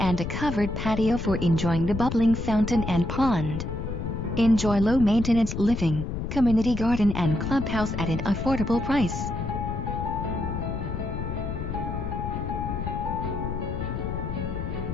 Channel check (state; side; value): noise; left; rumble, 4 dB below the sound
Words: a covered patio for enjoying the bubbling fountain and pond. Enjoy low-maintenance living, community garden and clubhouse at an affordable price.